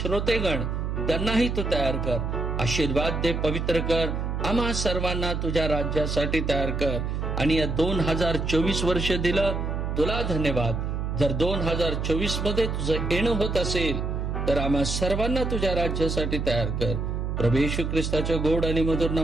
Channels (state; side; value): noise; right; hum, 2 dB below the sound